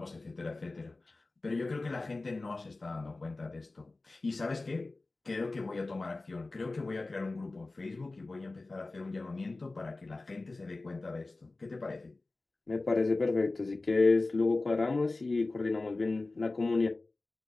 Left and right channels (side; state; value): right; quieter; 3.3 dB